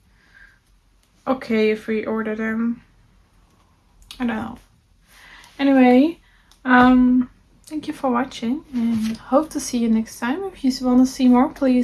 okay if we order them. I don't know. Anyway, thank you for watching, and hope to see you next time. If you want to see more,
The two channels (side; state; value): both; identical; correlation 1.00